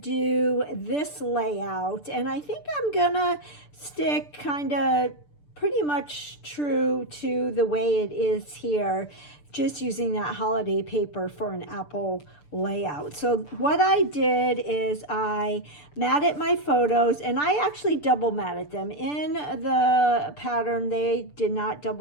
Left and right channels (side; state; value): right; late; 6.8 ms